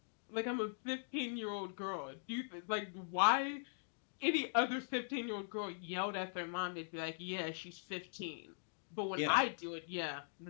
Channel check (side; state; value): right; silent; digital silence